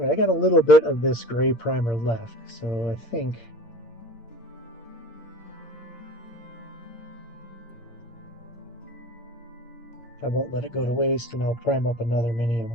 right, I got a little bit of this gray primer left, so I think I won't let it go to waste, and I'll prime up another mini I'm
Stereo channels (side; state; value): right; late; 8.7 ms